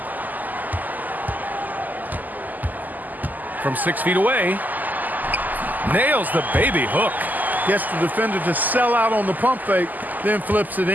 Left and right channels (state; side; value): late; left; 0.083 ms